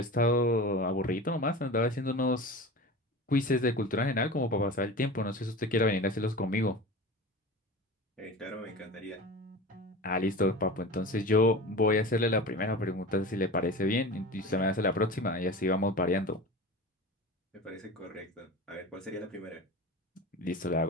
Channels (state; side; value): normal; both; correlation 0.32